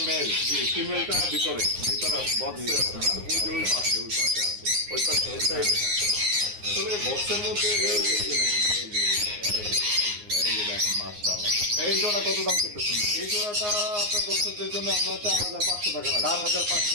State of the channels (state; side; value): late; left; 9.6 ms